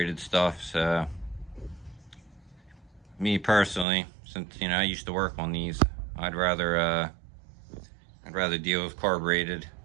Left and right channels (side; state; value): left; drops out; at 3.9 s